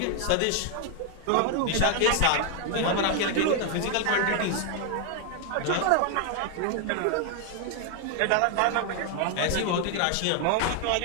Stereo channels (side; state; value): both; different; correlation 0.00